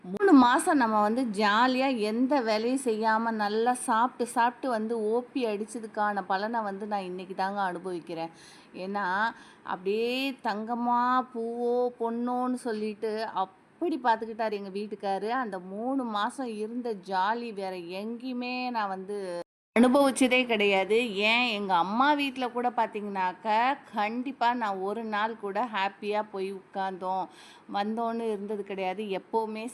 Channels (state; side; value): identical; both; correlation 1.00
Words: 3 மாதம் நம்ம வந்து ஜாலியாக எந்த வேலையும் செய்யாமல் நல்லா சாப்பிட்டு சாப்பிட்டு வந்து ஓபி அடித்ததுக்கான பலனை வந்து நான் இன்றைக்கி தாங்க அனுபவிக்கிறேன். ஏன்னா அப்படியே தங்கமா பூவோ பொண்ணோன்னு சொல்லிட்டு அப்படி பார்த்துக்கிட்டார் எங்கள் வீட்டுக்காரு. அந்த 3 மாதம் இருந்த ஜாலி வேறு எங்கேயுமே நான் வந்து அனுபவிச்சதே கிடையாது. ஏன் எங்கள் அம்மா வீட்டில் கூட பார்த்தீங்கன்னாக்கா, கண்டிப்பாக நான் ஒரு நாள் கூட ஹாப்பியாக போய் உட்கார்ந்தோம், வந்தோன்னு இருந்தது கிடையாது. எப்போவுமே